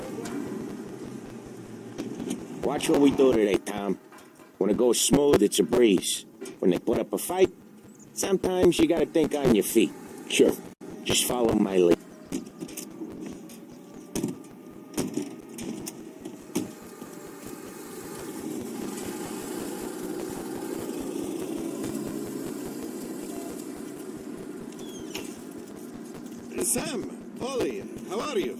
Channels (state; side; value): identical; both; correlation 1.00